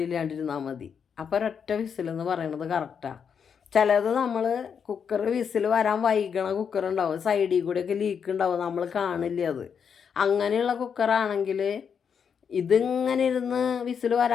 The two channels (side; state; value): right; quieter; 7.0 dB